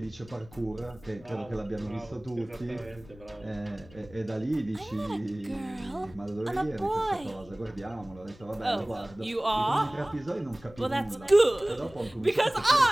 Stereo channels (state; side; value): noise; left; rumble, 21 dB below the sound